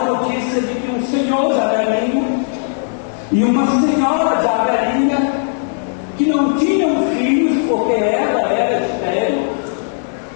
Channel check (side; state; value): right; silent; 68 dB below the other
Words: notícia de que um senhor jabelinho e uma senhora jabelinha, que não tinham filhos porque ela era estéril,